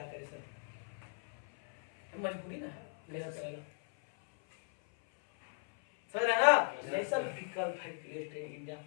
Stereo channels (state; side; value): silent; right; 53 dB below the other